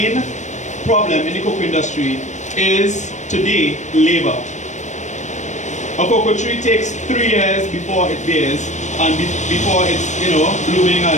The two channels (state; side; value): late; right; 0.34 ms